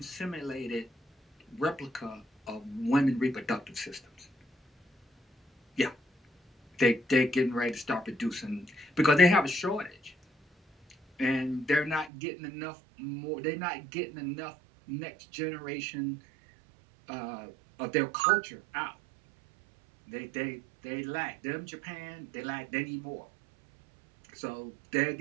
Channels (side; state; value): left; drops out; at 12.1 s